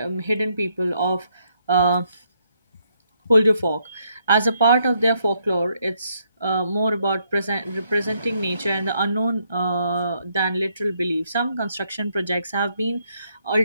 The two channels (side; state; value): both; inverted; correlation -0.74